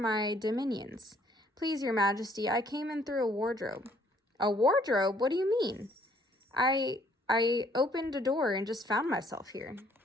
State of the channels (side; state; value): both; normal; correlation 0.63